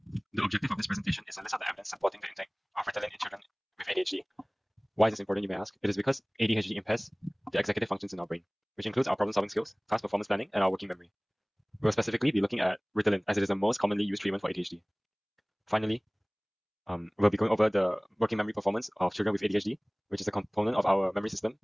The objective of this presentation is to list out the evidence supporting the intake of Ritalin in children with ADHD. Why is this important, you may ask? It is because ADHD impairs the executive functions in our brain, which includes our problem-solving skills, task performance planning, and our working memory. We'll specifically be looking at Ritalin as it is the most commonly used treatment for ADHD. Finally, we'll be going over the working memory performance of children with ADHD, which is a component of our memory system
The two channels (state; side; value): identical; both; correlation 1.00